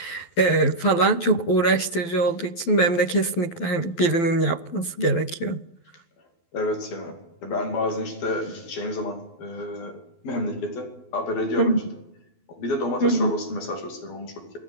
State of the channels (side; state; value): right; late; 12 ms